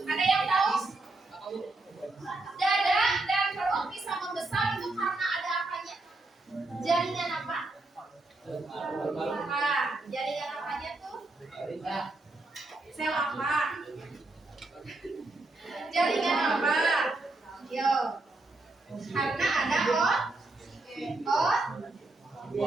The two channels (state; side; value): quieter; left; 3.0 dB